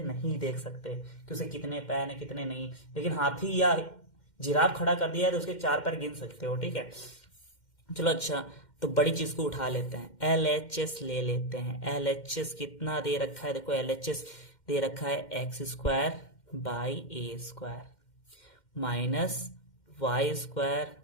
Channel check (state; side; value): late; right; 2.1 ms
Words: नहीं देख सकते कि उसे कितने पैर है कितने नहीं। लेकिन हाथी या जिराफ खड़ा कर दिया है तो उसके 4 पैर गिन सकते हो, ठीक है। चलो अच्छा, तो बड़ी चीज को उठा लेते हैं, LHS ले लेते हैं। LHS कितना दे रखा है? देखो LHS दे रखा है x square by a square minus y square